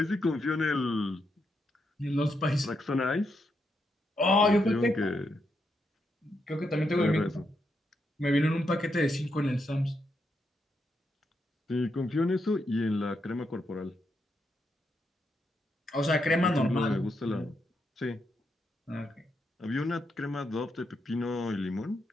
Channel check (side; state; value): both; normal; correlation 0.81